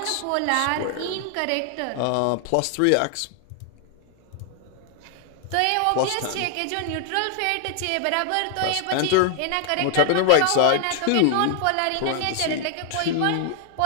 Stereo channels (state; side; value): different; both; correlation 0.00